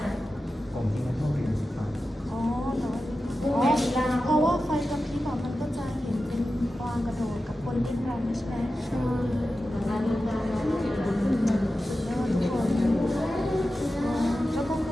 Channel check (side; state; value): both; normal; correlation 0.93